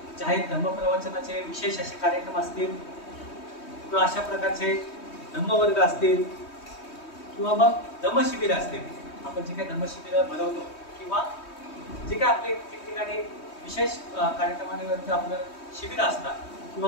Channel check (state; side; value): late; right; 3.2 ms